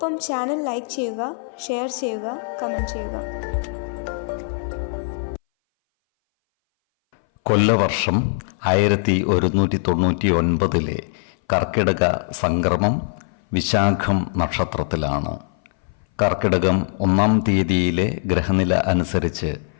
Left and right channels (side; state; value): right; silent; 60 dB below the other